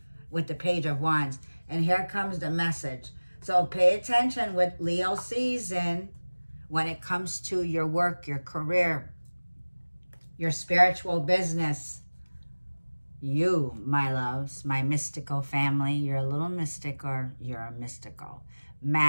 with the Page of Wands. And here comes the message. So pay attention with Leo season when it comes to your work, your career, your spiritual business. You, my loves, my mystical family, you're a little mystic or you're a mystical.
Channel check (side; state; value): both; inverted; correlation -1.00